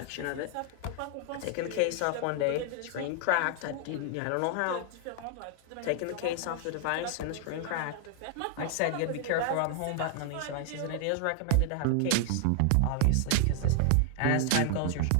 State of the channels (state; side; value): different; both; correlation 0.00